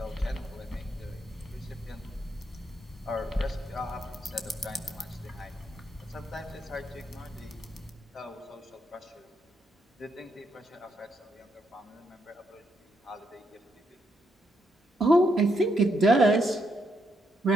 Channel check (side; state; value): both; normal; correlation 0.78